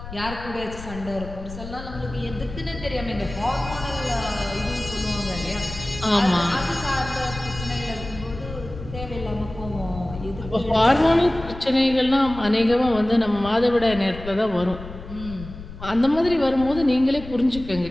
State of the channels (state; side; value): noise; left; rumble, 12 dB below the sound